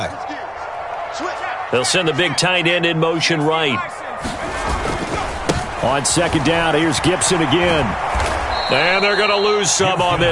They'll send the big tight end in motion right. On second down, here's Gibson again. And they're going to lose some on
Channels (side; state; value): both; identical; correlation 1.00